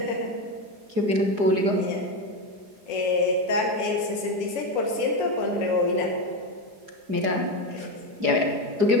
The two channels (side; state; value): left; late; 4.8 ms